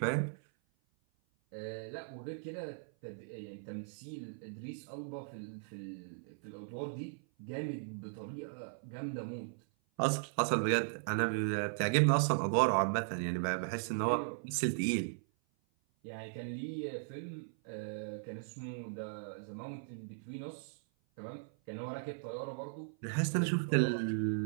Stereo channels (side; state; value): left; silent; 53 dB below the other